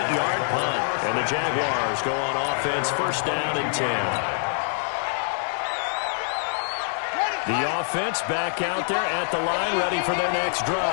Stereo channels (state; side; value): silent; right; digital silence